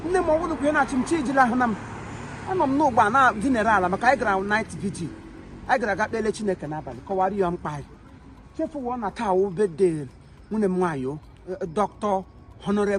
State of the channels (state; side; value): identical; both; correlation 1.00